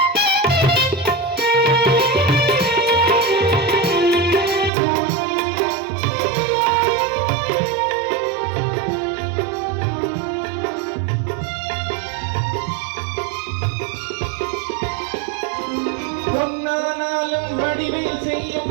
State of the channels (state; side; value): drops out; left; at 4.7 s